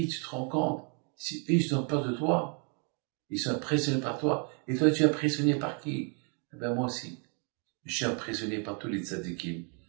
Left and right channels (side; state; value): left; quieter; 38.5 dB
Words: tu te rends compte, si eux, ils ont peur de toi, ils sont impressionnés par toi, et toi, tu es impressionné par qui? Eh ben, moi aussi. Je suis impressionné par tous les tzadikim,